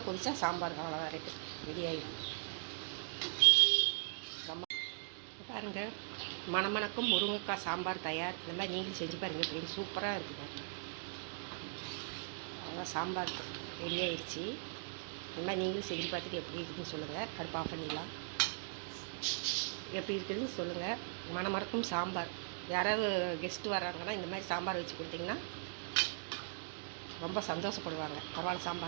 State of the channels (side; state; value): left; silent; digital silence